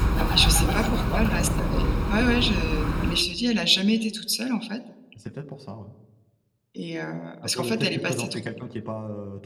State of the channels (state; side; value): identical; both; correlation 1.00